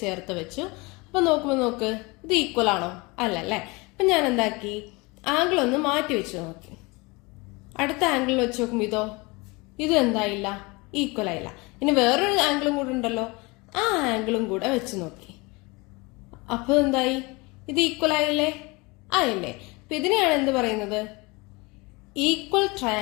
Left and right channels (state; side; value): quieter; right; 25.7 dB